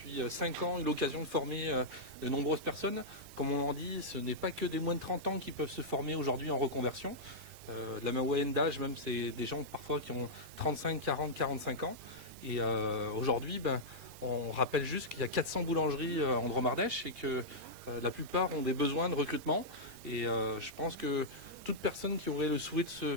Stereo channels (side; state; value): left; late; 3.8 ms